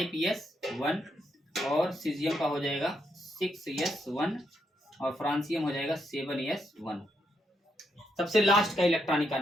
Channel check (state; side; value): normal; both; correlation 0.79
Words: और सीजियम का हो जाएगा 6s1 और फ्रांसियम हो जाएगा 7s1। सबसे लास्ट का इलेक्ट्रॉनिक